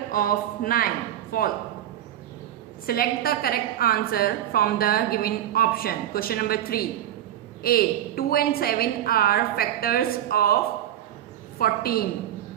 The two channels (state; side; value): quieter; left; 11.7 dB